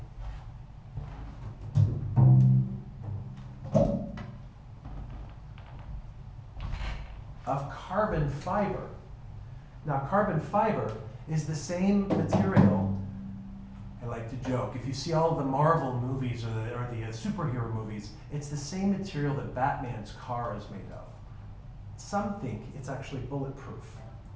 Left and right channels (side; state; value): both; identical; correlation 1.00